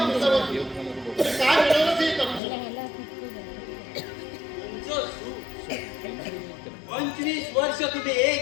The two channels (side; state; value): right; drops out; at 2.4 s